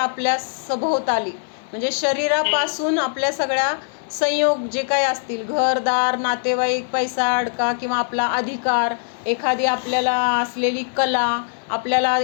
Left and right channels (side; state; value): right; silent; digital silence